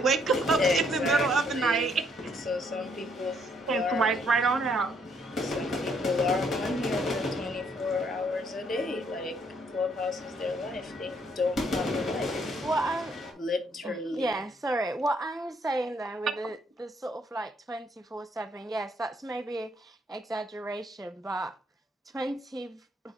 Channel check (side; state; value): both; normal; correlation 0.69